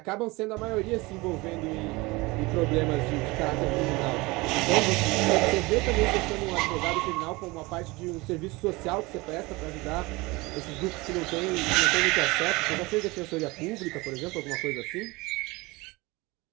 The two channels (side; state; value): left; quieter; 23.2 dB